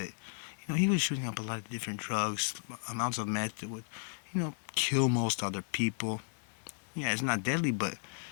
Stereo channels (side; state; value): right; silent; digital silence